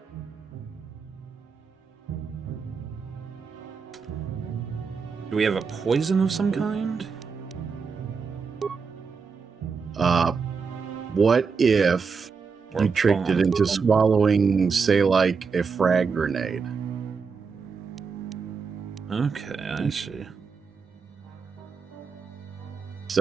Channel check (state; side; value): quieter; left; 5.4 dB